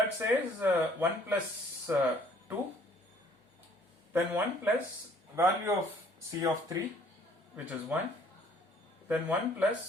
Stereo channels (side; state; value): both; normal; correlation 0.59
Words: says 1 plus 2, then 1 plus value of C of 3, which is 1, then 1